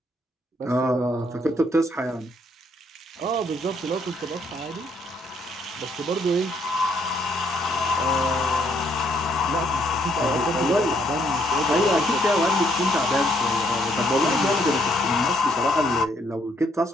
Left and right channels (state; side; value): normal; both; correlation 0.70